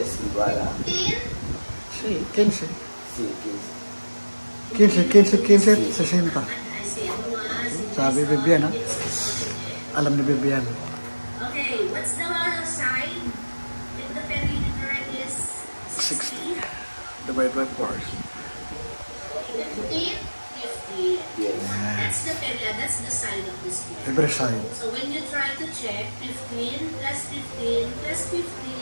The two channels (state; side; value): inverted; both; correlation -1.00